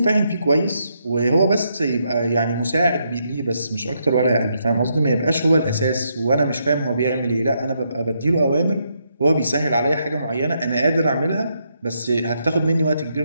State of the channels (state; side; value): inverted; both; correlation -0.78